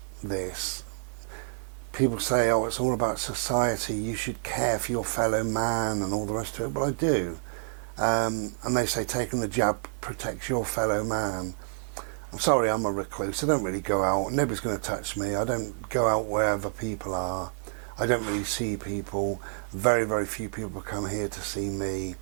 this, people say, oh, it's all about society, you should care for your fellow man and all the rest of it. Well, I do. And they say taking the jab protects your fellow man. I'm sorry, I'm a recluse. I don't really go out. Nobody's going to touch me. I don't go out wherever people are. I don't really see people. Very, very few people come here to see me.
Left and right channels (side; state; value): left; silent; digital silence